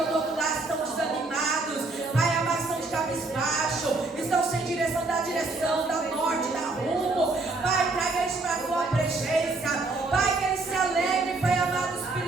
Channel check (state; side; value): quieter; left; 3.4 dB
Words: do outro lado que estão desanimados, Pai, amados, estão de cabisbaixo, estão sem direção, da norte, da rumo. Pai, traga eles para a tua presença, Pai, que eles se alegrem, Pai amado,